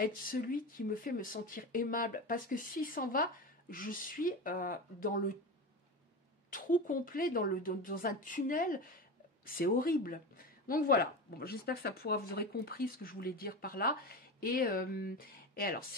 celui qui me fait me sentir aimable, parce que s'il s'en va, je suis dans le trou complet, dans un tunnel, c'est horrible. Donc voilà, bon, j'espère que vous aurez compris ce que je voulais dire par là, et alors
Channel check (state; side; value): normal; both; correlation 0.24